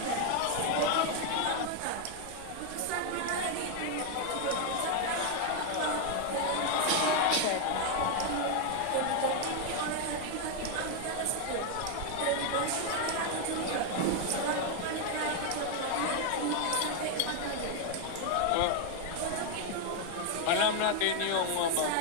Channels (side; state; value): both; different; correlation 0.01